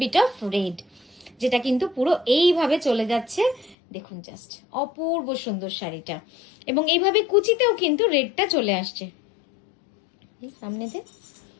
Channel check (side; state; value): right; drops out; at 3.8 s